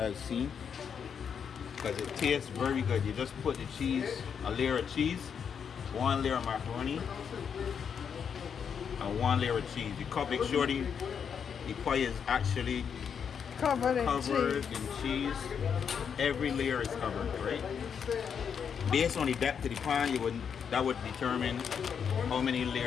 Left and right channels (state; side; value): quieter; right; 7.2 dB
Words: seen because it tastes very good. You just put the cheese, a layer of cheese, one layer of macaroni, and one layer of cheese. You make sure the pie is actually Covered in covered cheese. in cheese. Every layer is covered, right? Based on the depth of the pan, that would determine how many